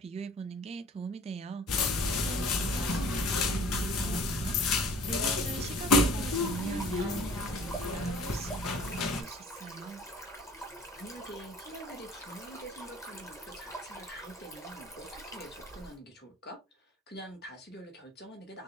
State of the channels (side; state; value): both; normal; correlation 0.48